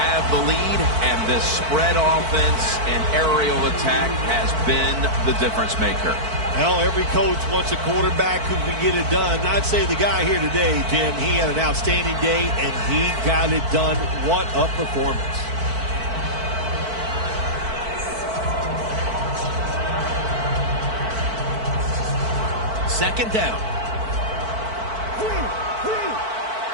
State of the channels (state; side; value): late; left; 4.5 ms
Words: the lead, and this spread offense and aerial attack has been the difference maker. Well, every coach wants a quarterback who can get it done. I'd say the guy here today, Jim, he had an outstanding day, and he got it done. What a performance. Second down.